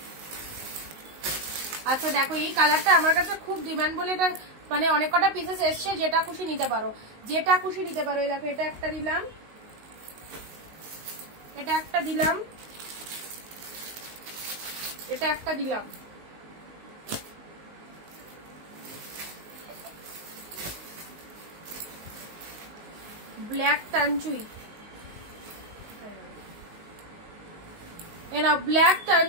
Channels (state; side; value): late; left; 19 ms